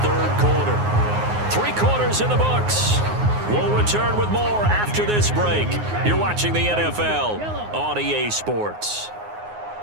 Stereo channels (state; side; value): late; left; 9.6 ms